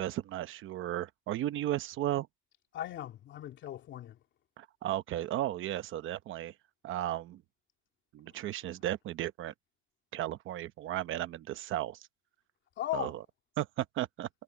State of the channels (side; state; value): left; quieter; 8.0 dB